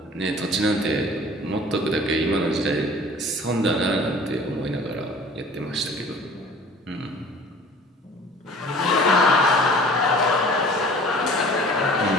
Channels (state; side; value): normal; both; correlation 0.47